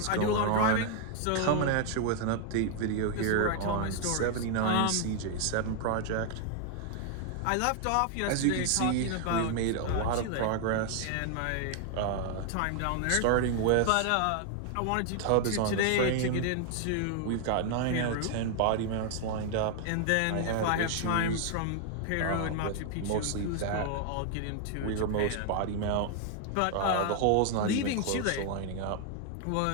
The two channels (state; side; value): different; both; correlation 0.00